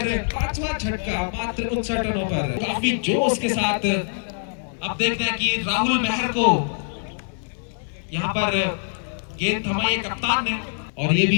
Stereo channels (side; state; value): right; silent; digital silence